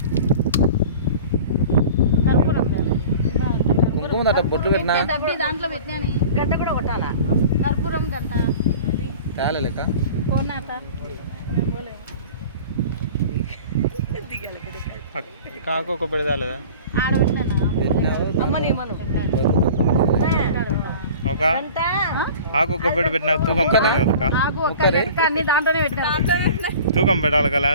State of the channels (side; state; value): both; inverted; correlation -0.41